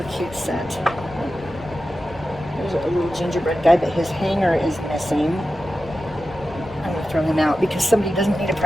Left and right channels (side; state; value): both; normal; correlation 0.93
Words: cute set. There's a little gingerbread guy, but his hanger is missing. I'm going to throw him out because somebody doesn't need a